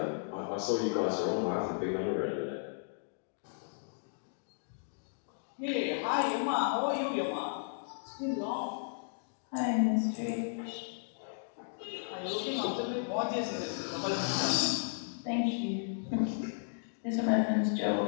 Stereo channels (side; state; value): right; silent; digital silence